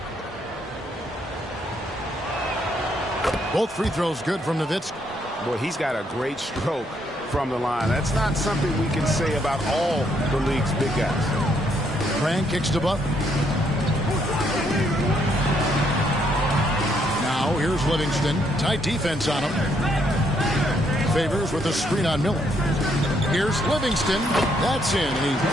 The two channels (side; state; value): both; normal; correlation 0.72